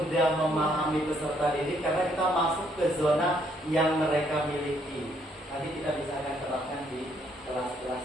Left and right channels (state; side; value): normal; both; correlation 0.70